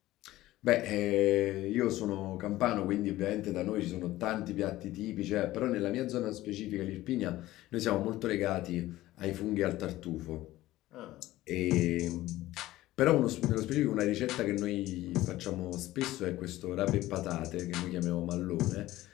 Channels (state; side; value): quieter; right; 16.3 dB